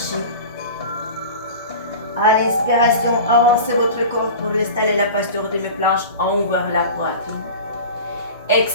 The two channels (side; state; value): both; inverted; correlation -0.35